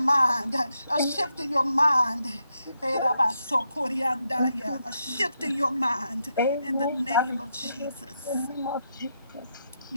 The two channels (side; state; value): both; inverted; correlation -0.82